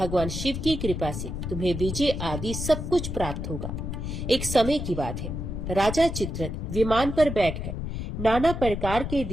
शिव की कृपा से तुम्हें विजय आदि सब कुछ प्राप्त होगा। एक समय की बात है, राजा चित्ररथ विमान पर बैठकर नाना प्रकार के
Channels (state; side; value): noise; left; rumble, 5 dB below the sound